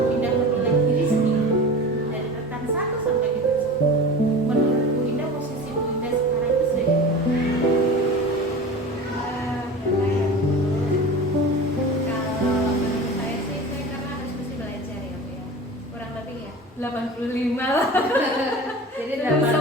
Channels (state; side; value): normal; both; correlation 0.33